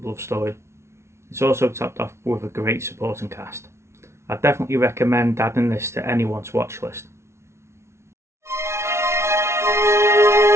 love story. It's also topped off with a great supporting cast. I definitely recommend adding this to anyone's watch list.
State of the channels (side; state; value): left; late; 0.13 ms